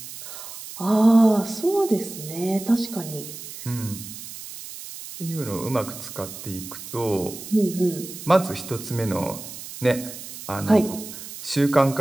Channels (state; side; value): noise; right; hiss, 12 dB below the sound